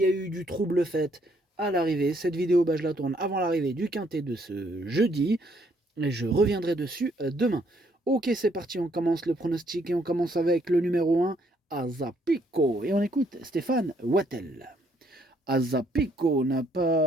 a eu du trouble fait à l'arrivée. Cette vidéo, je la tourne avant l'arrivée du quintet de ce jeudi. Et je reviendrai dessus demain. Ok, c'est parti, on commence le pronostic et on commence avec le numéro 1, Azapico. Et on écoute Stéphane Wattel. Azapico n'a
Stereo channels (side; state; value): both; normal; correlation 0.69